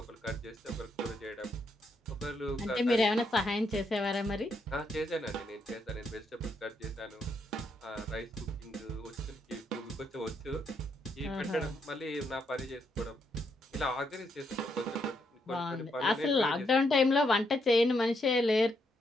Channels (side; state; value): both; normal; correlation 0.77